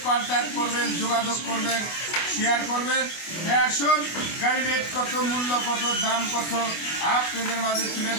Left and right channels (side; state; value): right; late; 24 ms